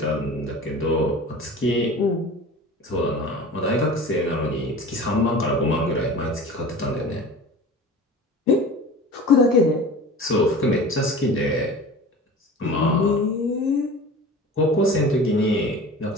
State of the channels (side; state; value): both; normal; correlation 0.37